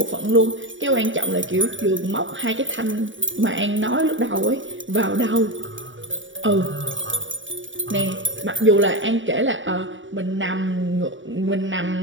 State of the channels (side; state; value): left; late; 0.56 ms